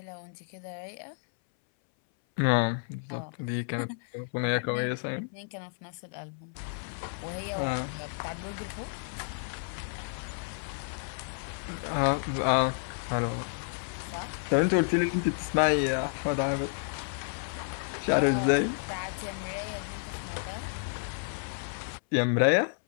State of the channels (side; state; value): right; silent; 57 dB below the other